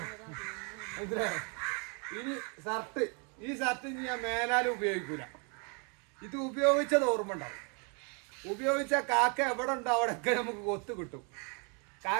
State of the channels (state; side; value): quieter; left; 36.3 dB